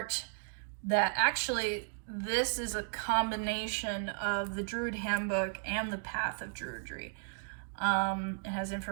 that actually, this is a combination of the Druid Handbook and the Path of Druidry. It has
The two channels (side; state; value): left; silent; digital silence